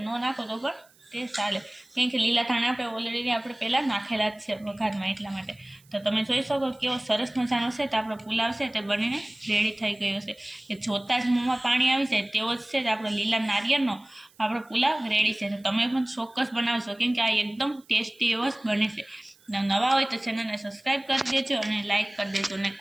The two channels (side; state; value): right; noise; hiss, 30 dB below the sound